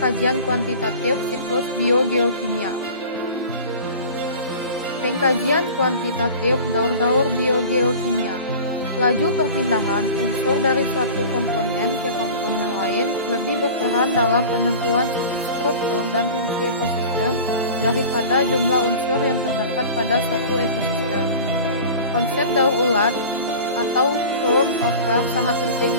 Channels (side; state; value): both; inverted; correlation -0.38